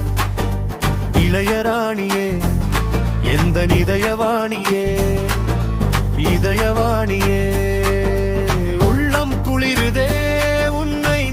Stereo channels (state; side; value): identical; both; correlation 1.00